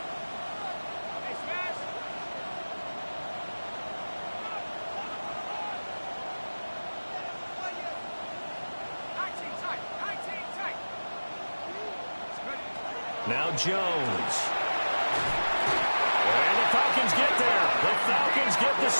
Now Jones. And the Falcons get there. The Falcons get the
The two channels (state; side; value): inverted; both; correlation -1.00